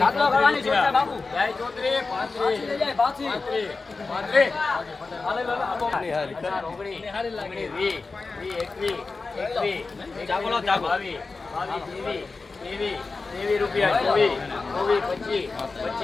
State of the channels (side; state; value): right; quieter; 4.0 dB